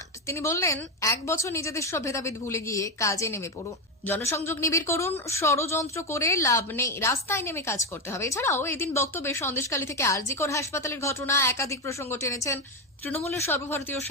তিনি বললেন, 1 বছর নিজেদের সব ভেদাভেদ ভুলে গিয়ে কাজে নেমে পড়ুন, জনসংযোগ নিবিড় করুন, ষড়যন্ত্র করে লাভ নেই, রাস্তায় নেমে কাজ করতে হবে। এছাড়াও এদিন বক্তব্যে সন্দেশখালী থেকে আরজিকর হাসপাতালের ঘটনা একাধিক প্রসঙ্গ টেনেছেন তৃণমূলের সর্বভারতীয়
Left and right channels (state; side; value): normal; both; correlation 0.11